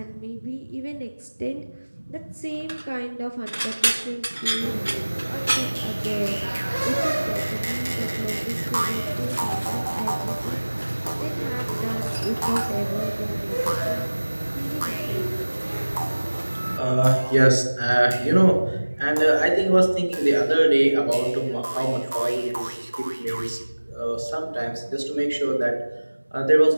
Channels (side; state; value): both; inverted; correlation -1.00